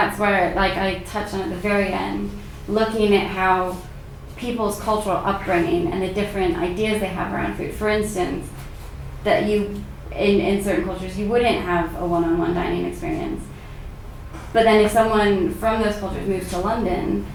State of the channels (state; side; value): identical; both; correlation 1.00